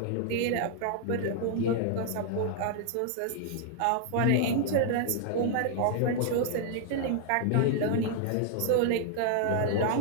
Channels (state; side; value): different; both; correlation -0.01